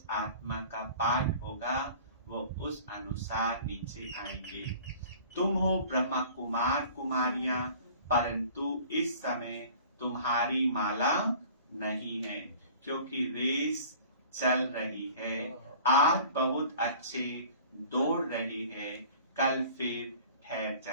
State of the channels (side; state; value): both; inverted; correlation -0.46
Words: आत्मा का पाठ होगा वो उस अनुसार नीचे आएंगे। तुम हो ब्रह्मा कुमार कुमारियां, परंतु इस समय तुम्हारी माला नहीं है, क्योंकि रेस चल रही है। आज बहुत अच्छे दौड़ रही है, कल फिर ठहर